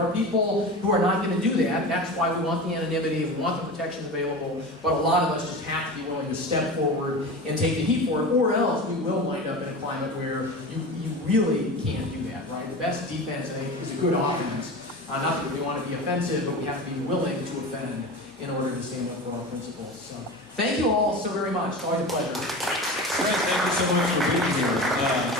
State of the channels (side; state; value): both; normal; correlation 0.29